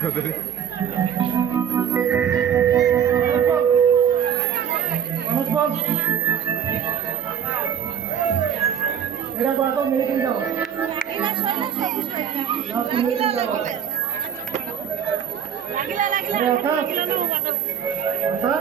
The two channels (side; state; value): left; quieter; 8.5 dB